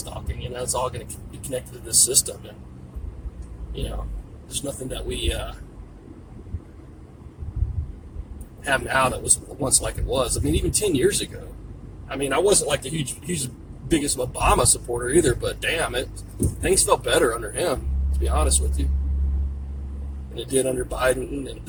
It's all going to be connected to this system, and there's nothing that we have now that was once like it was. I mean, even 10 years ago. I mean, I wasn't like the huge biggest Obama supporter either, but damn it, things felt better under him, to be honest with you, than it did under Biden and then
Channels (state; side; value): identical; both; correlation 1.00